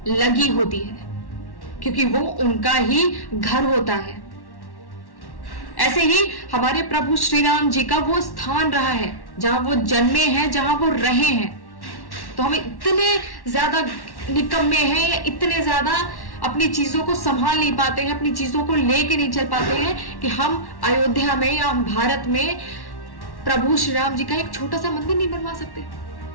लगी होती है, क्योंकि वो उनका ही घर होता है। ऐसे ही हमारे प्रभु श्री राम जी का वो स्थान रहा है जहां वो जन्मे हैं, जहां वो रहे हैं। तो हम इतने ज्यादा निकम्मे हैं या इतने ज्यादा अपनी चीजों को संभाल नहीं पाते हैं, अपनी चीजों को लेके नहीं चल पाते हैं कि हम अयोध्या में या भारत में प्रभु श्री राम जी का एक छोटा सा मंदिर नहीं बनवा सकते।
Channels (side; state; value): right; late; 1.1 ms